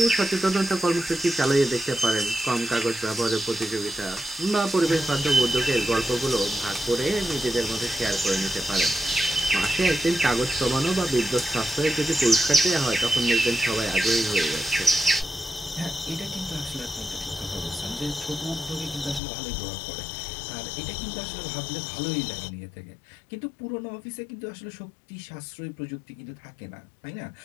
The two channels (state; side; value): drops out; right; at 19.2 s